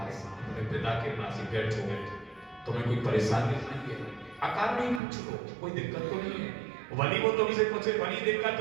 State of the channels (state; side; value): drops out; left; at 5.0 s